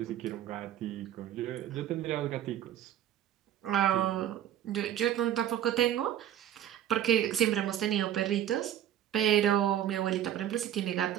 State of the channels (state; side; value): quieter; left; 11.2 dB